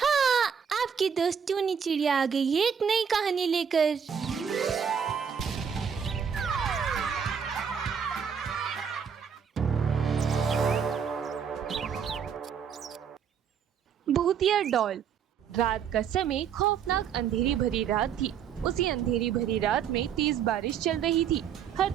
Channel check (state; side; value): quieter; left; 7.5 dB